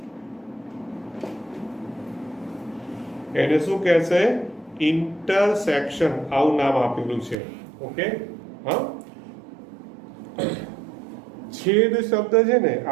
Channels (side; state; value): left; drops out; at 7.4 s